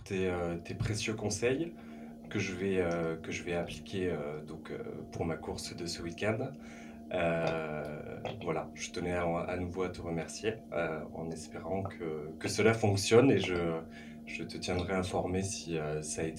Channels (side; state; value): both; identical; correlation 1.00